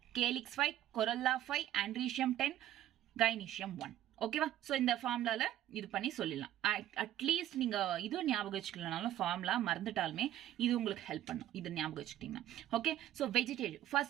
calyx 5, corolla 5, androecium 10, gynoecium 1. ஓகேவா? ஸோ இந்த ஃபார்முலால இது பண்ணி சொல்லிடலாம். அட்லீஸ்ட் நீங்க இதுவும் ஞாபகம் வச்சுக்கலனாலும் ஃபார்முலா மறந்துட்டாலுமே இது உங்களுக்கு ஹெல்ப் பண்ணும், இது ஞாபகம் வச்சுக்கிட்டீங்கன்னா. ஓகே, ஸோ வெஜிடேட்டிவ்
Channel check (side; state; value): left; quieter; 12.6 dB